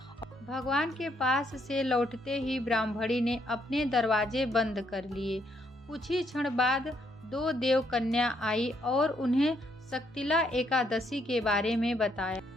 भगवान के पास से लौटते ही ब्राह्मणी ने अपने दरवाजे बंद कर लिए। कुछ ही क्षण बाद 2 देव कन्या आई और उन्हें शक्तिला एकादशी के बारे में बताया।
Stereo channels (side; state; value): both; normal; correlation 0.73